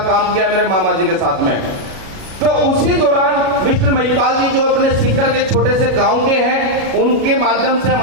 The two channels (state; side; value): late; left; 37 ms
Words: किया मेरे मामा जी के साथ में। तो उसी दौरान मिस्टर महिपाल जी जो अपने सीकर के छोटे से गांव के हैं, उनके माध्यम से